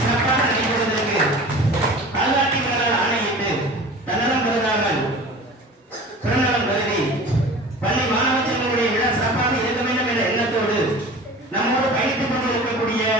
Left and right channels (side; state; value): both; normal; correlation 0.39